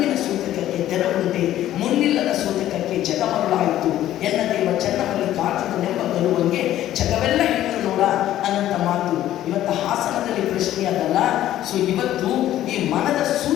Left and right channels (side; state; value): right; quieter; 13.0 dB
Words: ಸೂತಕಕ್ಕೆ ತೆರವುಂಟೆ, ಮುನ್ನಿಲ್ಲದ ಸೂತಕಕ್ಕೆ ಜಗಮರುಳಾಯಿತು ಎನ್ನ ದೇವ ಚೆನ್ನಮಲ್ಲಿಕಾರ್ಜುನನೆಂಬ ಬರುವಂಗೆ ಜಗವೆಲ್ಲ ಹೆಣ್ಣು ನೋಡ ಅನ್ನಂತ ಮಾತು ಇವತ್ತು ಹಾಸನದಲ್ಲಿ ಪ್ರಶ್ನೆ ಅದಲ್ಲ. ಸೊ ಇವತ್ತು ಈ ಮನದ